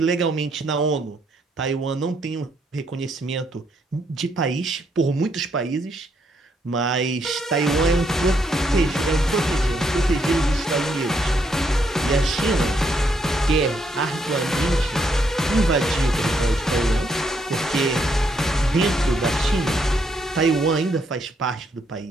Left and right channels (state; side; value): normal; both; correlation 0.74